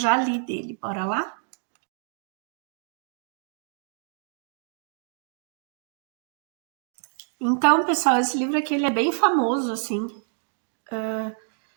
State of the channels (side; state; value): left; silent; 60 dB below the other